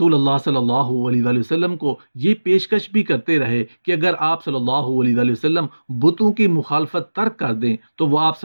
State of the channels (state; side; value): inverted; both; correlation -1.00